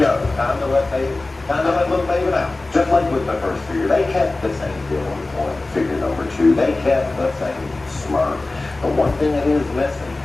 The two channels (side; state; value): right; quieter; 3.1 dB